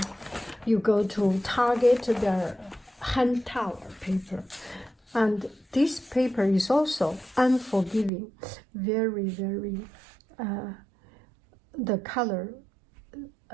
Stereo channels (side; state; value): left; drops out; at 8.1 s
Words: go to Target, their hand towel paper, and this paper is also unforgiving, very, very. The color